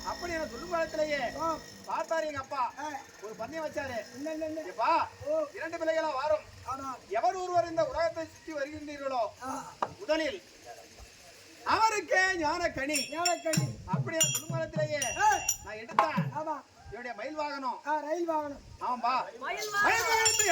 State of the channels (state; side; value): identical; both; correlation 1.00